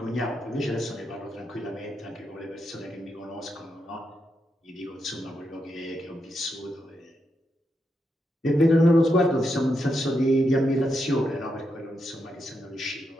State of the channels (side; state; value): both; normal; correlation 0.83